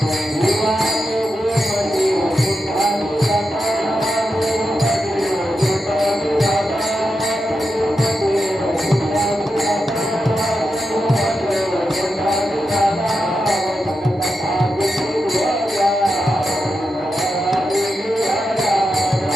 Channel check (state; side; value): normal; both; correlation 0.88